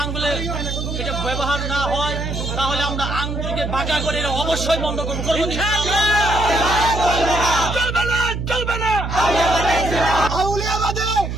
আঙ্গুলে এটা ব্যবহার না হয়, তাহলে আমরা আঙ্গুলকে বাঁকা করে এটা অবশ্যই বন্ধ করবো। চলবে না। আউলিয়াবাদে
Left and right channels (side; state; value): right; noise; hum, 4 dB below the sound